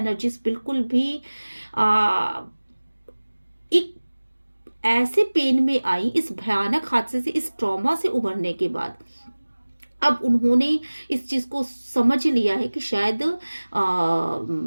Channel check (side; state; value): both; inverted; correlation -1.00